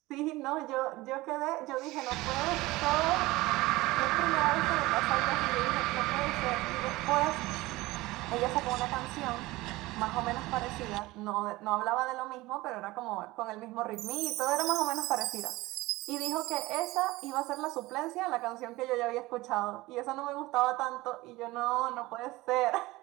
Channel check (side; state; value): left; quieter; 19.8 dB